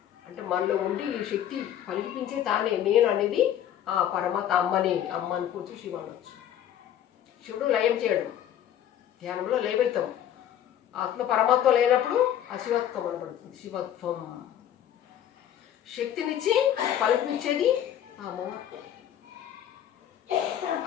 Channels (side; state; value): right; quieter; 10.7 dB